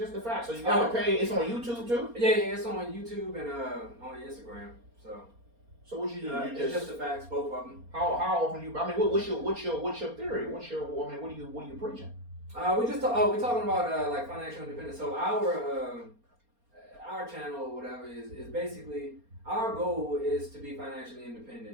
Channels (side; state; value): left; late; 4.3 ms